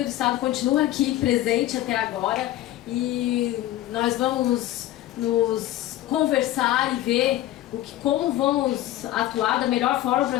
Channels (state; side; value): quieter; right; 14.4 dB